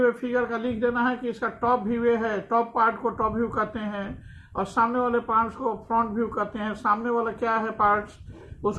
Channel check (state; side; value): identical; both; correlation 1.00